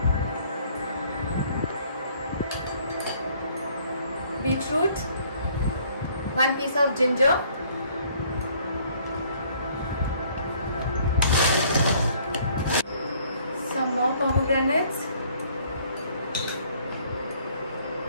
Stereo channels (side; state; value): both; inverted; correlation -0.60